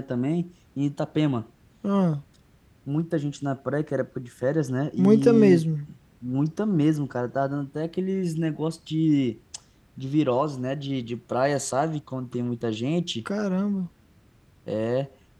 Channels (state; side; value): identical; both; correlation 1.00